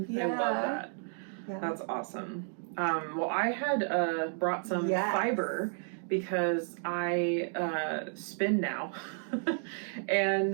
Yeah. I love that. Yeah. That's awesome. Well, I had brought some fiber because I spin now.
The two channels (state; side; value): silent; left; 56 dB below the other